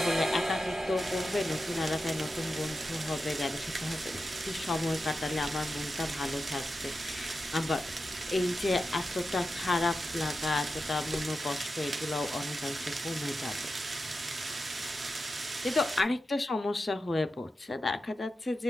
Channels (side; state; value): both; normal; correlation 0.90